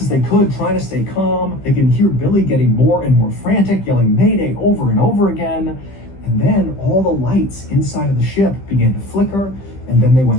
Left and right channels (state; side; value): late; right; 15 ms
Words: as they could, trying to stay calm. They can hear Billy getting more and more frantic, yelling Mayday over and over again. And then all the lights inside of the ship began to flicker, and then they